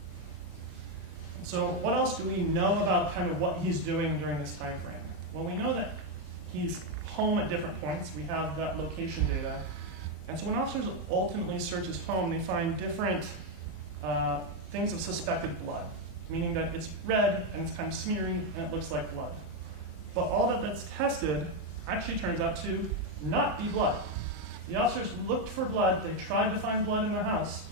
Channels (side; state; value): both; normal; correlation 0.05